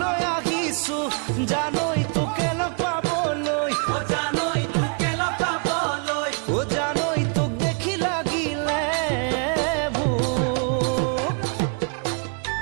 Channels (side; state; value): left; quieter; 38.8 dB